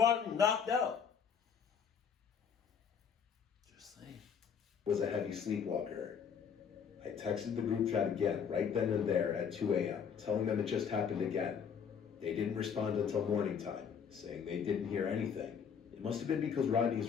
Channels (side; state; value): right; quieter; 7.1 dB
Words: knocked out? Just saying. Was a heavy sleepwalker. I texted the group chat again, right then and there at 2 a.m., telling them it just happened again. They didn't respond until morning time, saying they didn't hear anything. It must have been because